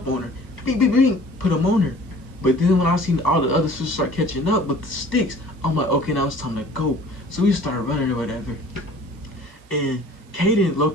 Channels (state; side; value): late; right; 1.2 ms